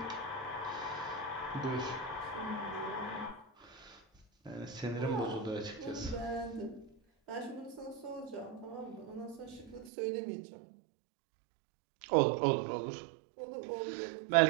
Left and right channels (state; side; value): drops out; left; at 9.9 s